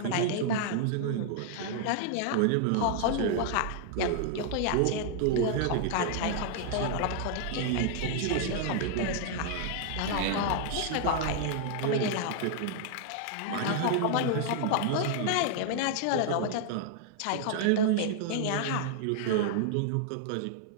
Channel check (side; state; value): both; different; correlation 0.00